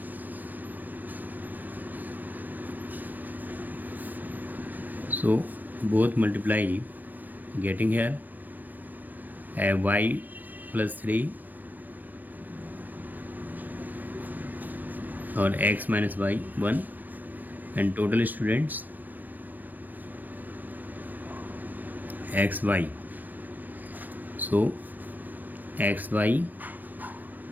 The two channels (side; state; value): left; late; 0.088 ms